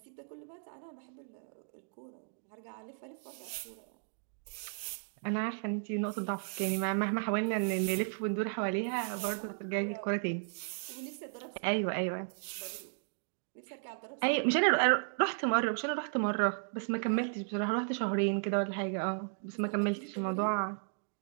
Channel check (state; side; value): silent; left; digital silence